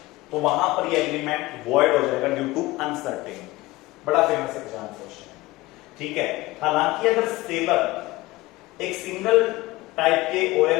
तो वहां पर ये एग्रीमेंट वॉइड हो जाएगा ड्यू टू अनसर्टेन। बड़ा फेमस एग्जाम क्वेश्चन है, ठीक है। हालांकि अगर सेलर एक सिंगल टाइप के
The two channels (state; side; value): quieter; right; 19.7 dB